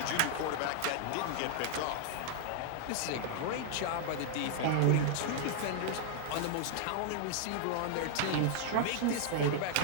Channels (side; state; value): both; different; correlation -0.01